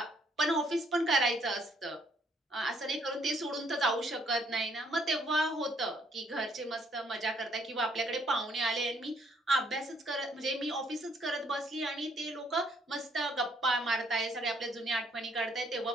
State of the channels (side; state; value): both; normal; correlation 0.67